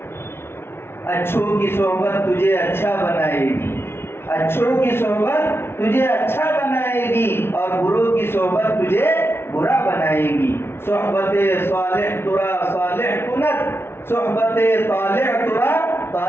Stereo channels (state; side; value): late; right; 0.12 ms